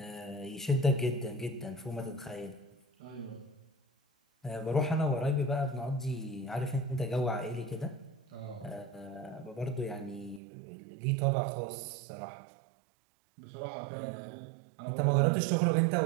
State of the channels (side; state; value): left; drops out; at 10.4 s